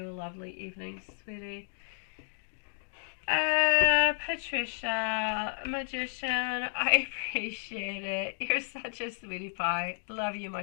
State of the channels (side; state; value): right; silent; digital silence